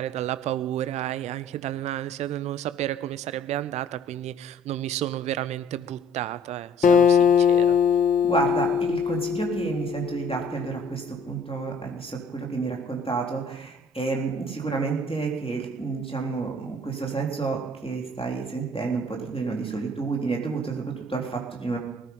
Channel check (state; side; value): normal; both; correlation 0.55